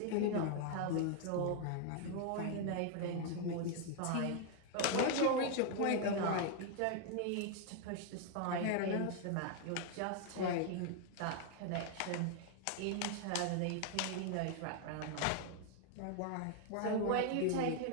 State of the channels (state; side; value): different; both; correlation 0.00